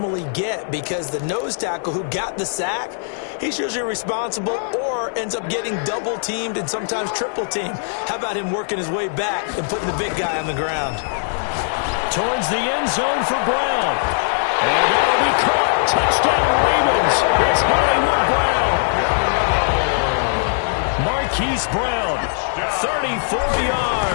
get because the nose tackle who got the sack, he's usually responsible or ends up getting double-teamed and sometimes triple-teamed. How about him working his way back and putting the big guy on the ground? Towards the end zone for Brown. And that'll be caught. Touchdown Ravens. It's Hollywood Brown. Marquise Brown, 34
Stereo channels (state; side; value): silent; right; digital silence